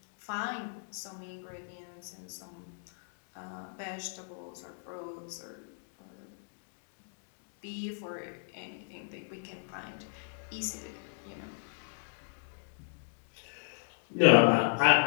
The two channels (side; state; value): right; silent; digital silence